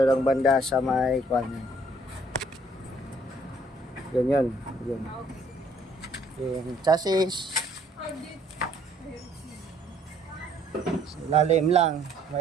lang banda sa may kwan. Yun. Yung chassis. Sa ilalim lang.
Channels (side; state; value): both; normal; correlation 0.61